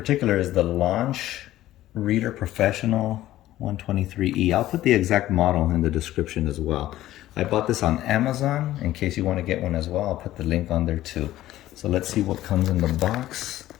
is the Launch Reader Professional 123E. I'll put the exact model in the description as well. I bought this on Amazon. In case you want to get one as well, I'll put the link on there too. So let's see what comes in the box.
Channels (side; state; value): right; quieter; 14.6 dB